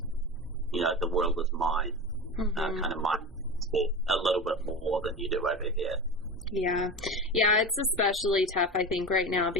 the world is mine, kind of mindset a little bit more than you do over here. Yeah, it's especially tough, I think, right now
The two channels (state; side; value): normal; both; correlation 0.27